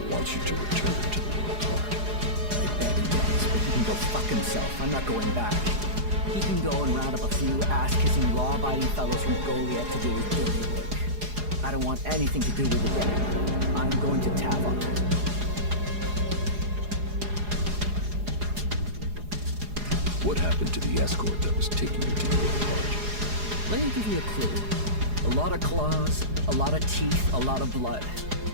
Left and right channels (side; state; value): left; late; 4.8 ms